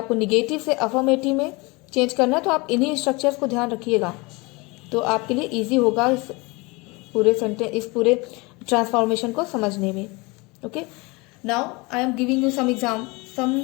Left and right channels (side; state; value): right; quieter; 25.8 dB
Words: निगेटिव से अफर्मेटिव में चेंज करना है। तो आप इन्हीं स्ट्रक्चर्स को ध्यान रखिएगा तो आपके लिए ईजी होगा इस पूरे ट्रांसफॉर्मेशन को समझने में। Okay, now I am giving you some